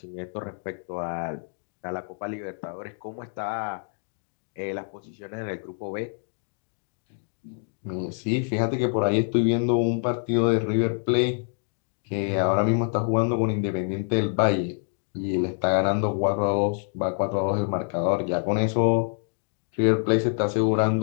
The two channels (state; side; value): silent; right; 55 dB below the other